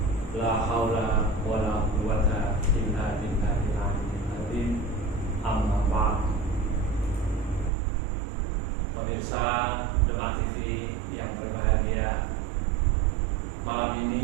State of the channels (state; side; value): drops out; left; at 7.7 s